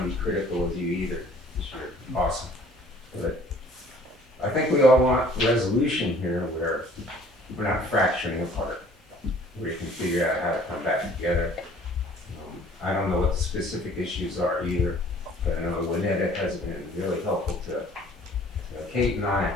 be critical of you either, because you're awesome. But I think we all want resolution here where we're not fracturing apart, where you can figure out how to come back together. I don't know what the specific issues are either, but I know Windham has been really helpful to Kate and I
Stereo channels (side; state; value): both; normal; correlation 0.54